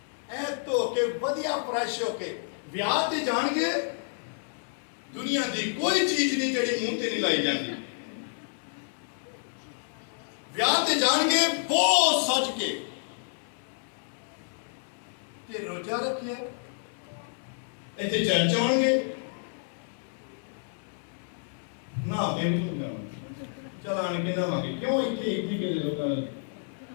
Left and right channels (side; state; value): right; silent; 58 dB below the other